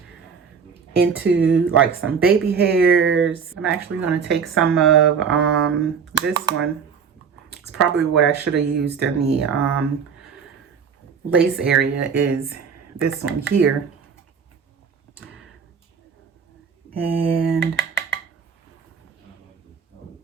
into like some baby hairs. I'm actually going to take some of this one. It's probably what I should have used in the lace area, is this one here. And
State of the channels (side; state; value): left; quieter; 6.4 dB